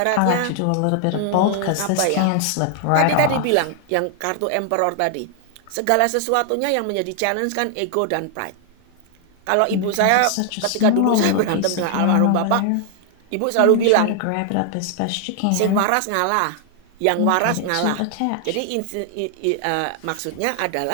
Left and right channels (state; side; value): different; both; correlation 0.00